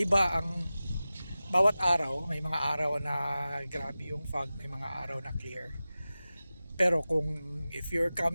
ang bawat araw. May mga araw na grabe yung fog, may mga araw na clear. Pero if you're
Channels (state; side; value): inverted; both; correlation -0.96